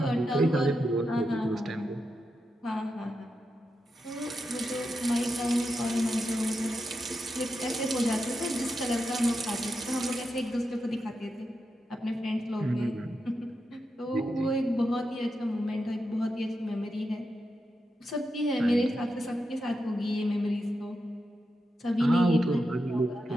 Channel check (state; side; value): normal; both; correlation 0.87